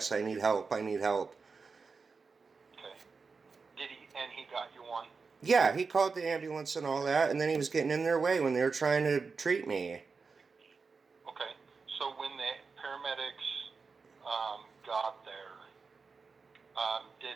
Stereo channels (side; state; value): left; quieter; 4.8 dB